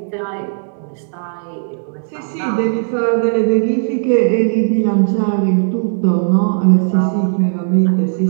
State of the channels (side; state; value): left; silent; digital silence